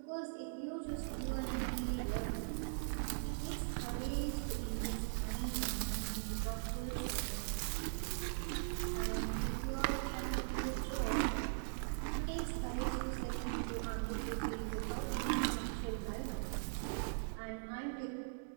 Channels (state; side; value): silent; left; digital silence